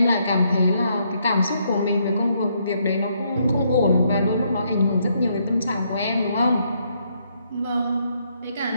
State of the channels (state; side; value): inverted; both; correlation -0.73